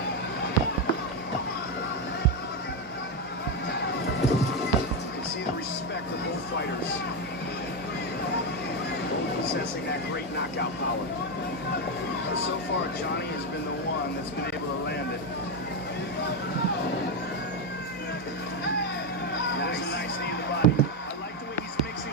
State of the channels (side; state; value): both; normal; correlation 0.08